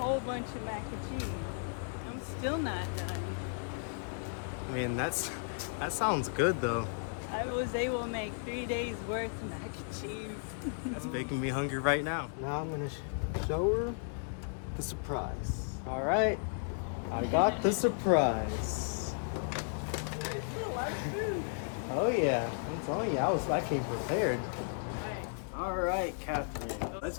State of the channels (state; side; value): silent; right; digital silence